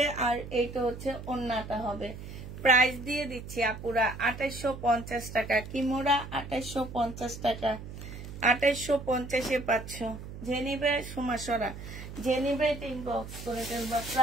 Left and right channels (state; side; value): noise; right; hum, 11 dB below the sound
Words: আর এইটা হচ্ছে ওড়নাটা হবে। প্রাইস দিয়ে দিচ্ছি আপুরা 2850 টাকা। কিমোরা 2850 টাকা। 2850-এ পাচ্ছ। যে নিবে সুমাসরা, যে নিবে ইনবক্স করে ফেলবা।